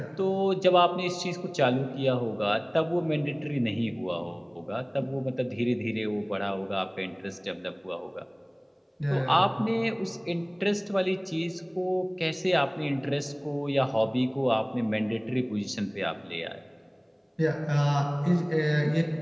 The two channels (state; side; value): identical; both; correlation 1.00